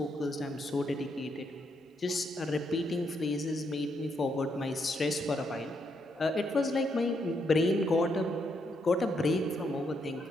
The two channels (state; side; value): normal; both; correlation 0.77